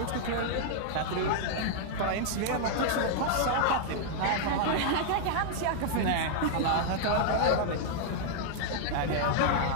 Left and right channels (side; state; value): both; different; correlation -0.01